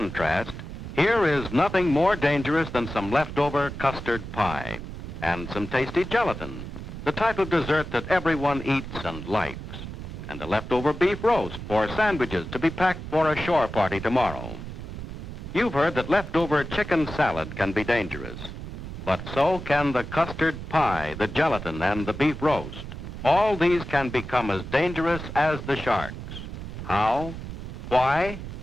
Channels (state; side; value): noise; right; rumble, 9 dB below the sound